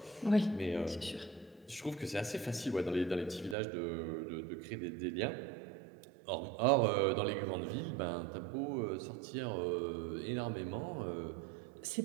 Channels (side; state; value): left; drops out; at 3.6 s